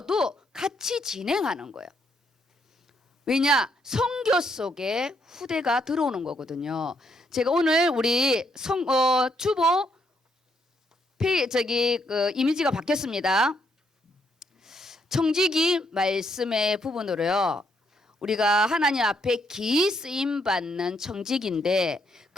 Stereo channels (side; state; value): both; normal; correlation 0.74